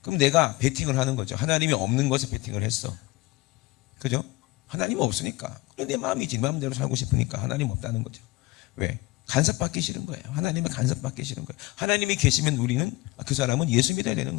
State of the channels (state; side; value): quieter; right; 20.7 dB